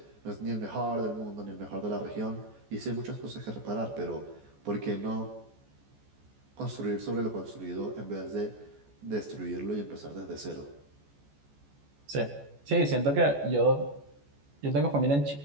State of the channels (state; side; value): late; left; 14 ms